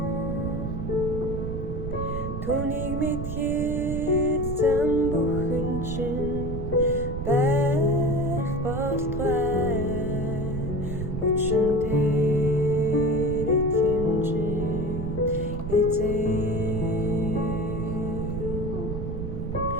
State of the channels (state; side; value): noise; right; rumble, 4 dB below the sound